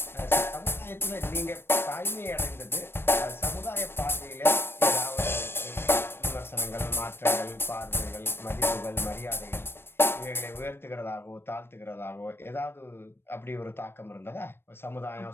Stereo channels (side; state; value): right; late; 0.11 ms